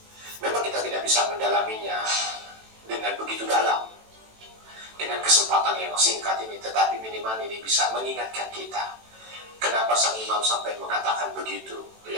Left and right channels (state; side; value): late; left; 18 ms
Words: Memang kita tidak bisa mendalaminya dengan begitu dalam, dengan kesempatan yang singkat ini, tetapi minimal ini bisa mengingatkan kita. Kenapa sang imam sampai mengatakan begitu